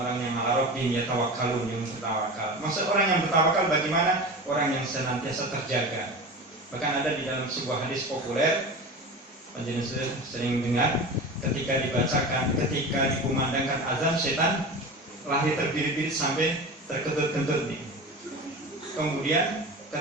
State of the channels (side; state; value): both; normal; correlation 0.30